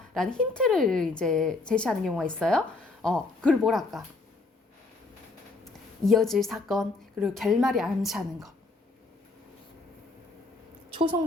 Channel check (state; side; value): quieter; right; 3.5 dB